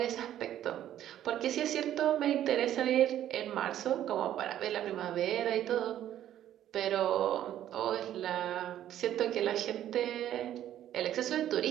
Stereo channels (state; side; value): quieter; left; 11.7 dB